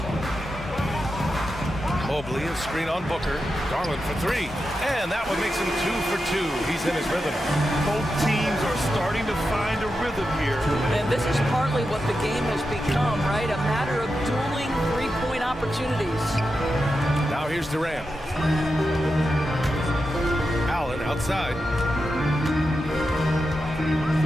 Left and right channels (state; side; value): normal; both; correlation 0.89